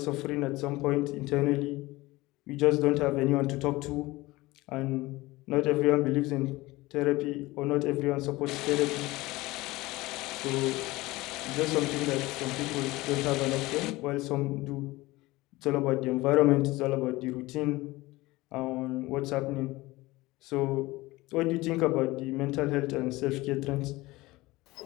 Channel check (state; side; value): quieter; right; 20.1 dB